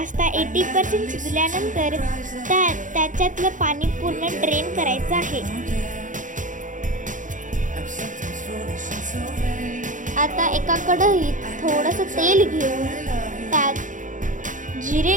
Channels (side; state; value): left; late; 0.37 ms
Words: 80% शिजल्यानंतर त्याच्यातलं पाणी पूर्ण ड्रेन करायचं आहे। आता एका कढईत थोडंसं तेल घेऊन त्यात जिरे